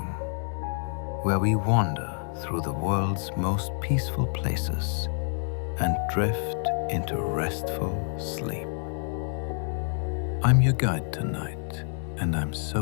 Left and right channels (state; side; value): silent; right; 59 dB below the other